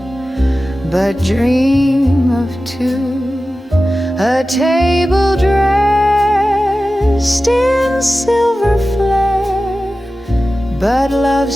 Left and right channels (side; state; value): both; normal; correlation 0.94